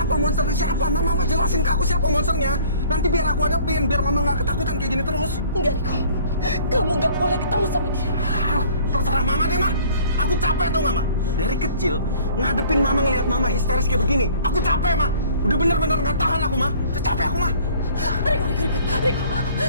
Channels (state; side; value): inverted; both; correlation -0.53